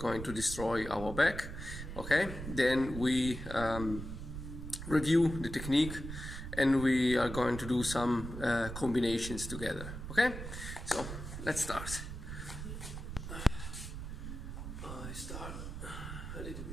to destroy our back. Okay, then we review the technique and we are going to do some combinations together. Okay, so let's start. I start a little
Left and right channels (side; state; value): right; noise; rumble, 8 dB below the sound